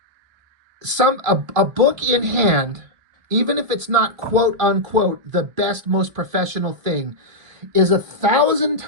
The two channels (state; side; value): late; left; 2.5 ms